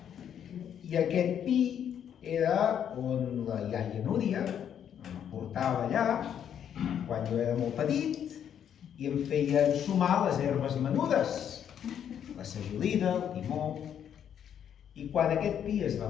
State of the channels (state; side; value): quieter; right; 9.1 dB